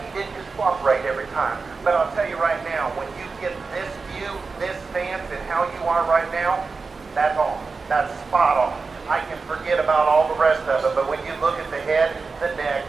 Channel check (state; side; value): quieter; left; 4.4 dB